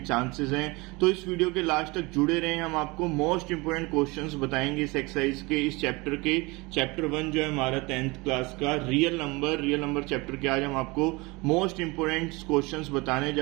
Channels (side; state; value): left; quieter; 24.8 dB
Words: चांसेस हैं। तो इस वीडियो के लास्ट तक जुड़े रहें, हम आपको मोस्ट इंपोर्टेंट क्वेश्चंस बताएंगे इस एक्सरसाइज के, इस चैप्टर के। चैप्टर 1 जो है हमारा 10th क्लास का रियल नंबर चैप्टर के आज हम आपको मोस्ट इंपोर्टेंट क्वेश्चंस बताने